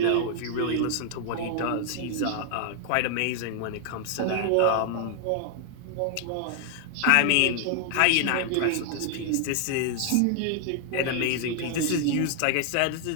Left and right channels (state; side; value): different; both; correlation 0.00